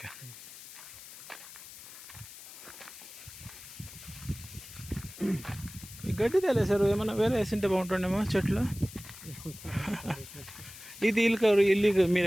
ఈ గడ్డి తెలిసారు ఏమన్నా వేరే వేసింటే బాగుంటుండేమో చెట్లు. ఇది ఇల్లు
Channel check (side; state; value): left; noise; hiss, 15 dB below the sound